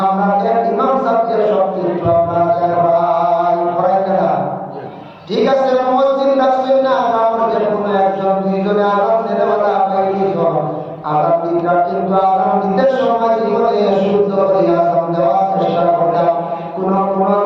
ইমাম সাহেবকে সব কিছু আপনারা পড়াইতে না। ঠিক আছে, মসজিদ রাখছেন না, আমার যে কোনো একজন দুইজনে আরাম দিতে পারা আরাম দিনটা, কিন্তু আরাম দিতে সময় জীবনে শুদ্ধ করে আরাম দেওয়ার চেষ্টা করতাম। কোন কোন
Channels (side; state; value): both; identical; correlation 1.00